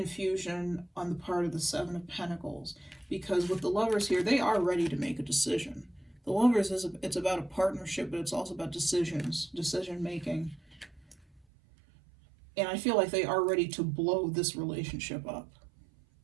on the part of the Seven of Pentacles, because with the Lovers here, they are ready to make a decision. The Lovers it's about a partnership, but it's also about decision making. And I feel like they are ready to blow this relationship up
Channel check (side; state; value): left; drops out; at 11.5 s